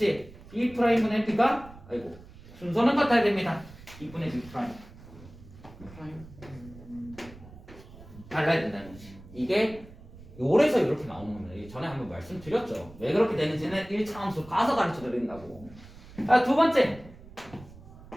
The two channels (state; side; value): noise; right; rumble, 19 dB below the sound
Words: B 프라임분의 B가 순서는 같아야 됩니다. B분의 B 프라임. 달라야 된다는 거지. 이게 요래서 이렇게 나오는 겁니다. 전에 한번 말씀드렸죠. 왜 그렇게 되는지는 1차 함수 가서 가르쳐 드린다고. 두 번째.